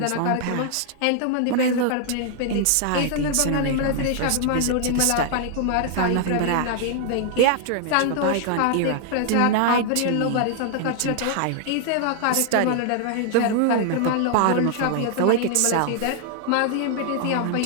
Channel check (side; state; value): both; different; correlation 0.00